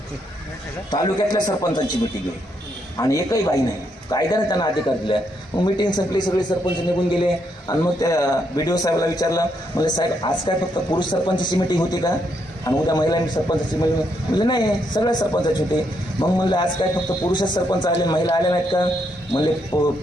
तालुक्यातल्या सरपंचांची मीटिंग आहे आणि एकही बाई नाही. कायद्याने त्यांना अधिकार दिला. मग मीटिंग संपली, सगळे सरपंच निघून गेले, आणि मग त्या BDO साहेबाला विचारलं, म्हणजे साहेब आज काय फक्त पुरुष सरपंचाची मीटिंग होती का, आणि उद्या महिला सरपंचाची मीटिंग? म्हणजे नाही, सगळ्या सरपंचाची होती. मग म्हणलं आज काय फक्त पुरुषच सरपंच आले, महिला आल्या नाहीत का? म्हणले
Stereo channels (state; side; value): normal; both; correlation 0.77